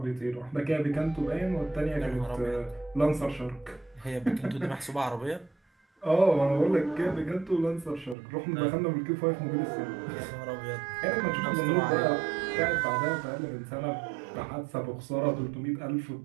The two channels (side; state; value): left; drops out; at 8.2 s